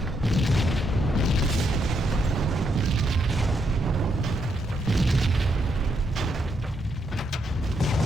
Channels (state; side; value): normal; both; correlation 0.78